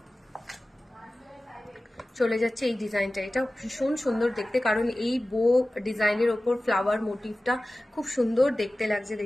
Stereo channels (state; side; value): normal; both; correlation 0.97